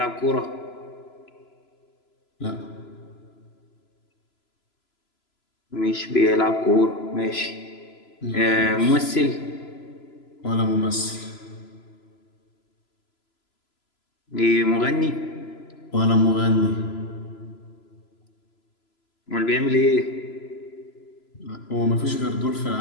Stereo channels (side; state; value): right; late; 3.0 ms